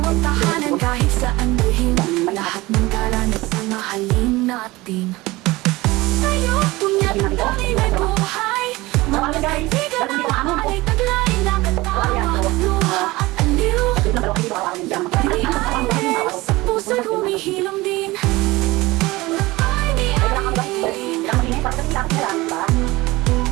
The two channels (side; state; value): left; quieter; 20.4 dB